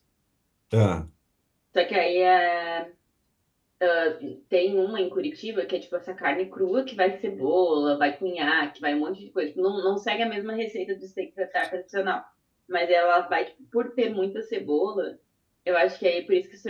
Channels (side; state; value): both; identical; correlation 1.00